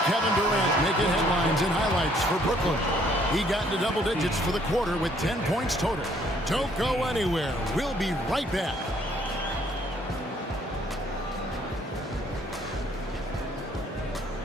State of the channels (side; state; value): both; normal; correlation 0.64